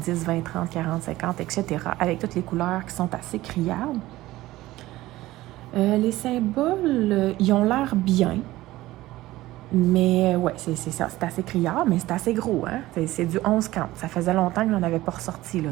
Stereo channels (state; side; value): quieter; left; 17.0 dB